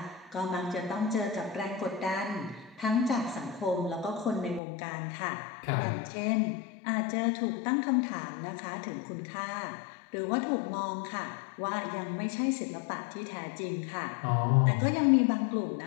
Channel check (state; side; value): drops out; right; at 4.6 s